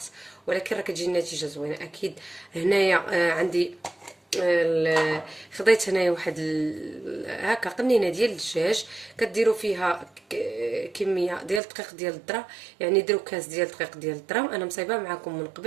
ولكن راه كتجي النتيجه زوينه اكيد. هنايا عندي خديت هنايا واحد هكا قنينه ديال الدجاج، كديروا فيها كميه ديال الدقيق ديال الذره، يعني ديروا كاس ديال الدقيق ديال الذره. انا مصايبه معكم من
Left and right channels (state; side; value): drops out; left; at 11.6 s